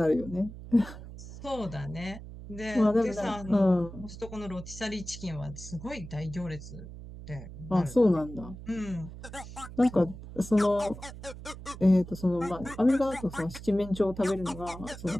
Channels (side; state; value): right; noise; hum, 13 dB below the sound